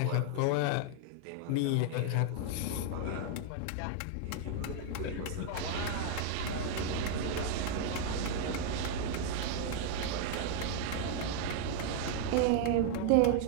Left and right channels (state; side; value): different; both; correlation 0.00